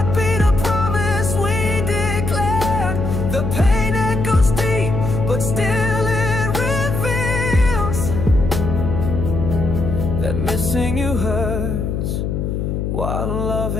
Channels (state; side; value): noise; left; hum, 2 dB below the sound